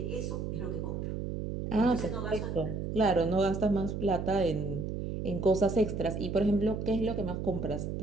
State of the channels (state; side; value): noise; right; hum, 4 dB below the sound